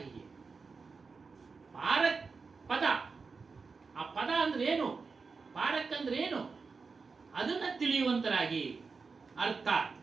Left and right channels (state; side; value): quieter; left; 4.7 dB